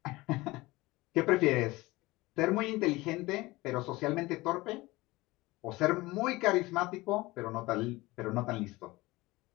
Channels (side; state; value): right; quieter; 20.7 dB